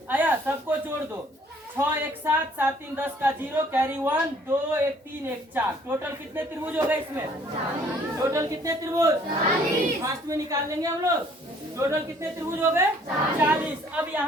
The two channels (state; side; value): normal; both; correlation 0.59